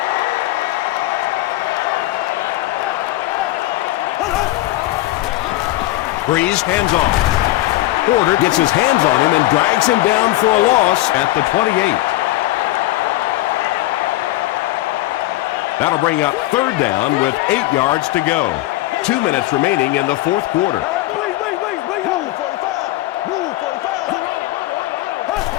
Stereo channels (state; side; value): quieter; right; 17.2 dB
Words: Breeze hands off. Porter gets his hands on him and drags him down for a loss at the 28. That'll bring up third down with 8 yards to go. 2 minutes remaining in the fourth quarter.